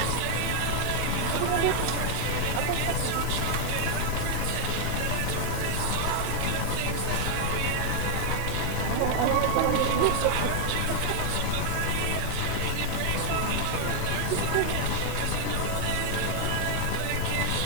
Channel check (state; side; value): different; both; correlation -0.01